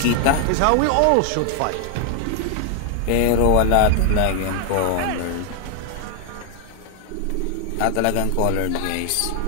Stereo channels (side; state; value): both; different; correlation 0.00